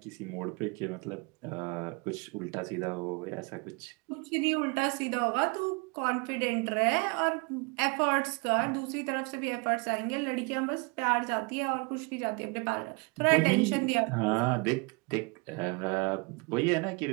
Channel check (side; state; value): left; quieter; 30.5 dB